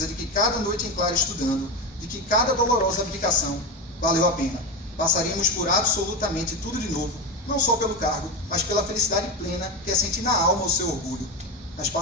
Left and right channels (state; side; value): normal; both; correlation 0.18